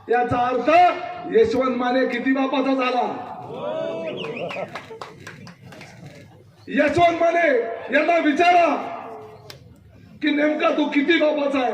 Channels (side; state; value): both; identical; correlation 1.00